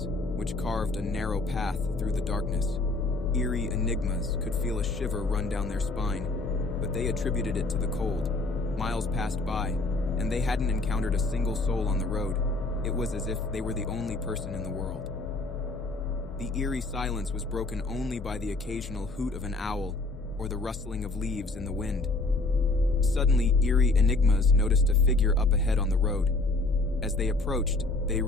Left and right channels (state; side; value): quieter; right; 3.2 dB